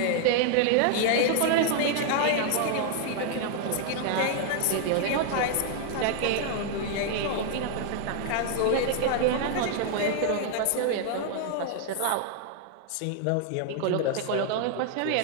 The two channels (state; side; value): different; both; correlation 0.00